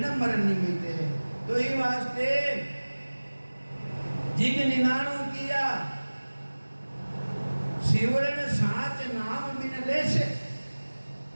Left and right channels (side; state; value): both; inverted; correlation -1.00